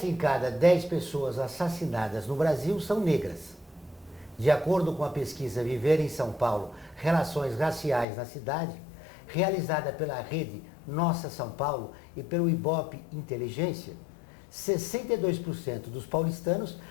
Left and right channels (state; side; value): drops out; right; at 8.1 s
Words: em cada 10 pessoas assassinadas no Brasil são negras. De acordo com a pesquisa Viver em São Paulo, Relações Raciais na Cidade, realizada pela rede Nossa São Paulo e pelo Ibope Inteligência, 62% dos paulistanos